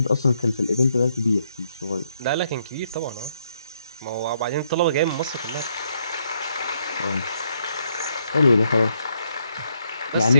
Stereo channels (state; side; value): inverted; both; correlation -0.74